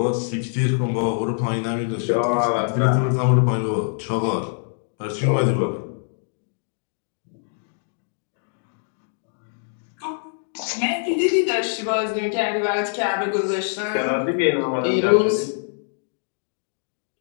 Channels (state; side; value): silent; right; digital silence